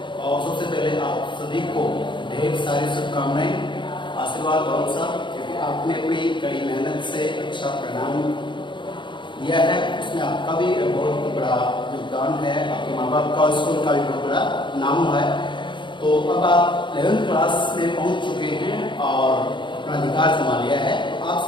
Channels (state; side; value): late; right; 0.23 ms